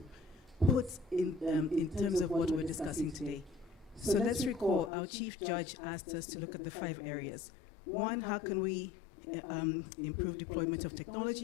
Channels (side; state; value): right; drops out; at 4.9 s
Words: put in terms of what we're discussing today. So let's recall our Chief Judge asked us to look at the 5 areas. 1, how can we improve deployment of